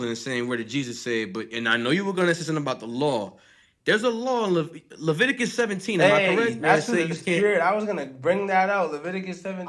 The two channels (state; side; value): identical; both; correlation 1.00